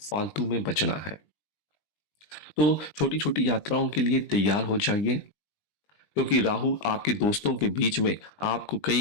में बचना है। तो छोटी छोटी यात्राओं के लिए तैयार हो जाइए क्योंकि राहु आपके दोस्तों के बीच में आपको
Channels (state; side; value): late; right; 20 ms